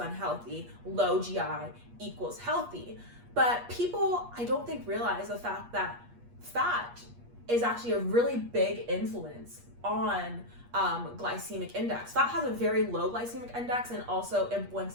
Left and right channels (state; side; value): late; left; 8.4 ms